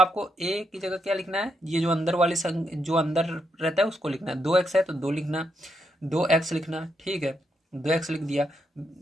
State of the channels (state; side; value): normal; both; correlation 0.80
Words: a की जगह क्या लिखना है, ये जो अंदर वाली जो अंदर रहता है उसको लिखना है। 2x है तो 2 लिखना, 2x लिखना। ठीक है, 2x लिख दिया।